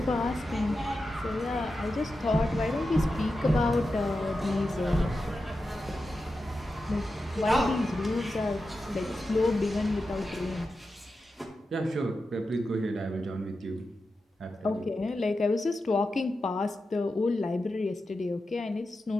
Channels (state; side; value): normal; both; correlation 0.90